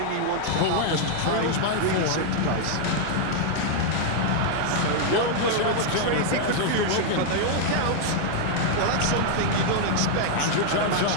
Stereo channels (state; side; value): different; both; correlation 0.00